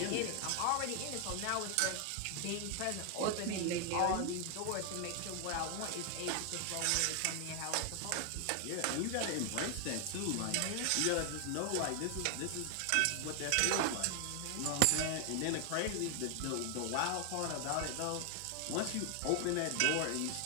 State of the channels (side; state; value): both; different; correlation 0.00